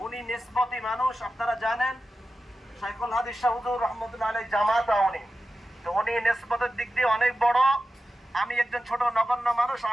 উনি নিসবতি মানুষ, আপনারা জানেন শাইখুল হাদিস শাহ হুজুর রহমতুল্লাহ আলাইহি জামাত উনি, তো উনি নিসবতের দিক দিয়ে অনেক বড়, আমি একজন ছোট নগণ্য মানুষ,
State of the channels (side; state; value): both; normal; correlation 0.92